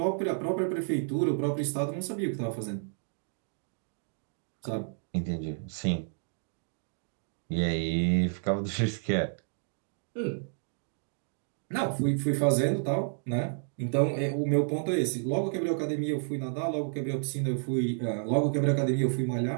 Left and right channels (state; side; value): silent; left; digital silence